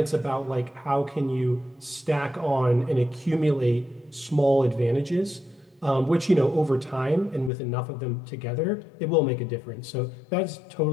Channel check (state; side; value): drops out; right; at 7.5 s